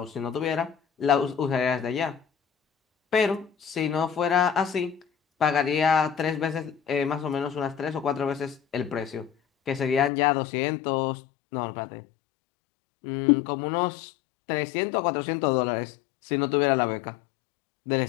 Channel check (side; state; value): right; drops out; at 10.1 s